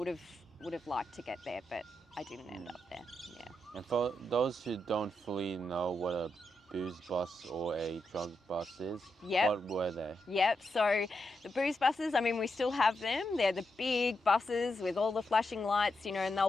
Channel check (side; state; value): both; normal; correlation 0.84